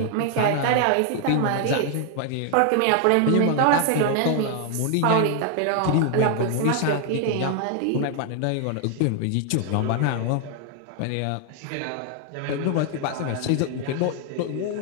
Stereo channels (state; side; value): different; both; correlation 0.00